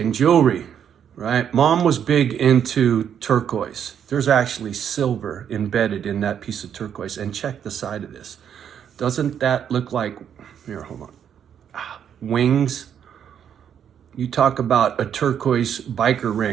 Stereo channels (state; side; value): quieter; left; 8.7 dB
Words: jewelry, right? Mom was big into turquoise. There's actually silver embedded in that piece of turquoise. And check the side of this. Doesn't that look like, here, hold on, wings? You talk about a turquoise biker